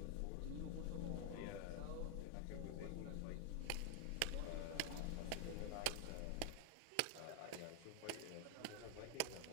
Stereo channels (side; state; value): both; different; correlation 0.00